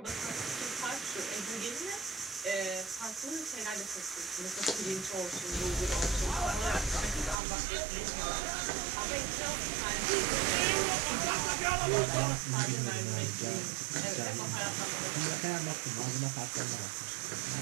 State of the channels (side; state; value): left; drops out; at 7.4 s